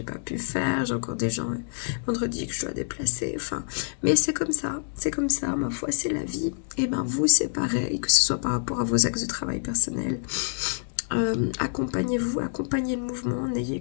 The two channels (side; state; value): right; silent; digital silence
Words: pas pu faire, j'ai encore des gens vendredi que je dois déplacer. Enfin, mais c'est comme ça, ma foi, c'est la vie. Et ben vous, c'est pareil, que ce soit par rapport à vos axes de travail personnel. Accompagnez-vous, accompagnez le mouvement, n'ayez